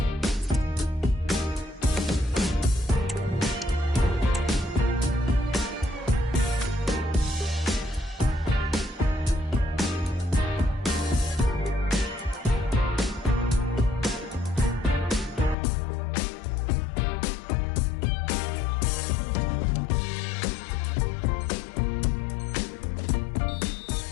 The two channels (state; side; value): drops out; right; at 15.6 s